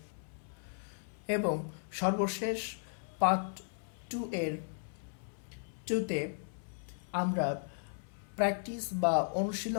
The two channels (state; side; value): silent; right; 54 dB below the other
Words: এবং সর্বশেষ পার্ট টুতে আমরা প্র্যাকটিস বা